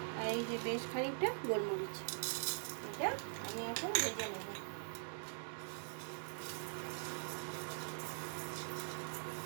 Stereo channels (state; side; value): silent; left; digital silence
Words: আর এই যে বেশ খানিকটা গোলমরিচ, এটা আমি এখন ভেজে নেব।